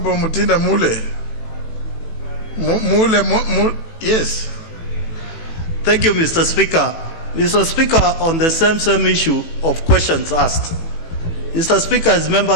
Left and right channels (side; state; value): right; late; 18 ms